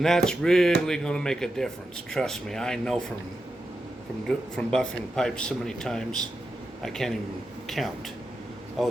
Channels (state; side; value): normal; both; correlation 0.88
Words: that's really going to make a difference. Trust me, I know from buffing pipes so many times, I can't even count. Oh,